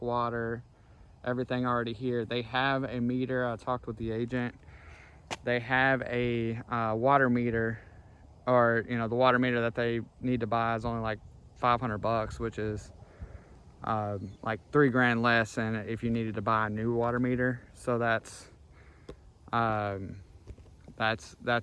water, everything already here. They have a meter. I talked with the agent. They have a water meter, or the water meter that they need to buy is only like $500, which is like $3 grand less than if you needed to buy a new water meter. So that's a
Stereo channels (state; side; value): identical; both; correlation 1.00